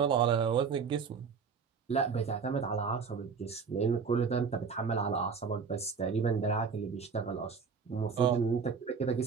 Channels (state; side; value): quieter; left; 5.8 dB